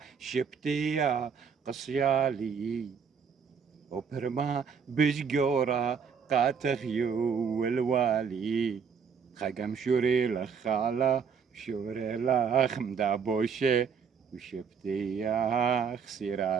شبتيا قصيالي وبرما بشجورة قاتغيو الوالي خقم شوري لخالة شوري لخ مدابوشي وشبتي يا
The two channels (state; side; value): quieter; left; 6.5 dB